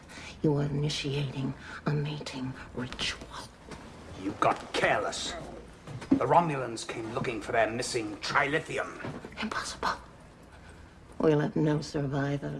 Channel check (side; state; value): both; identical; correlation 1.00